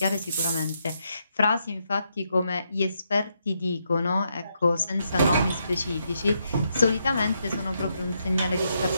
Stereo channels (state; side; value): inverted; both; correlation -0.79